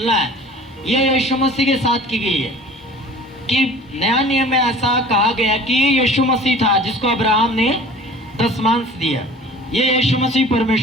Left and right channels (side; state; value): both; normal; correlation 0.45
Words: है, यह यीशु मसीह के साथ की गई है। कि नया नियम में ऐसा कहा गया कि ये यीशु मसीह था जिसको अब्राहम ने दशमांश दिया। ये यीशु मसीह